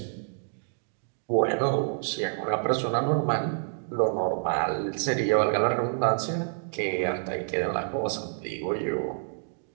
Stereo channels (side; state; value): left; silent; digital silence